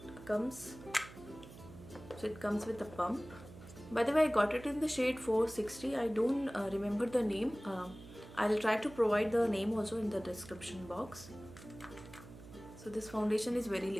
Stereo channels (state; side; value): noise; right; hum, 17 dB below the sound